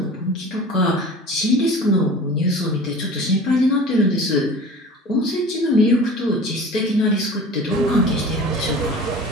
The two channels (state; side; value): normal; both; correlation 0.40